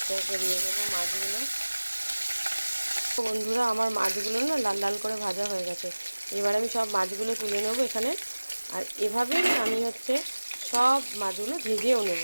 একে দিয়ে দেবো মাছগুলো। বন্ধুরা, আমার মাছগুলো না লাল লাল করে ভাজা হয়ে গেছে। এবার আমি সব মাছগুলো তুলে নেবো এখানে। আর এভাবেই আমি সব মাছগুলো ভেজেও নেব।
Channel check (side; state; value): both; inverted; correlation -1.00